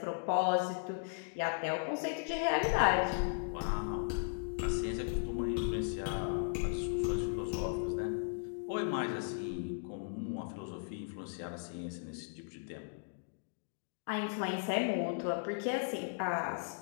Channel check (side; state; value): right; silent; digital silence